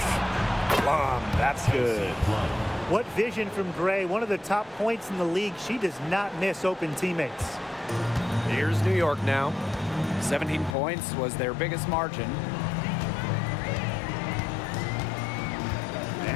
That's good. What vision from Gray, one of the top points in the league. She does not miss open teammates. Here's New York now. 17 points was their biggest margin.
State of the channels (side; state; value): right; drops out; at 10.8 s